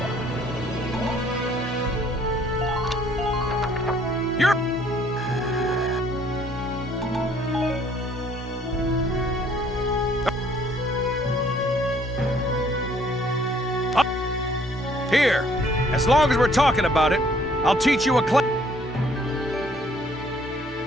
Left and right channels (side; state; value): both; normal; correlation 0.61